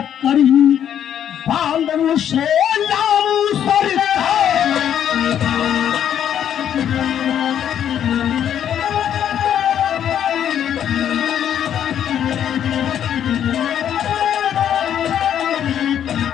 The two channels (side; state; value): right; quieter; 9.7 dB